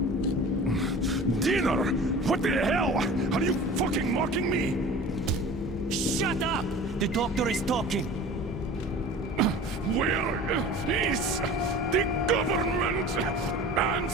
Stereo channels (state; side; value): normal; both; correlation 0.40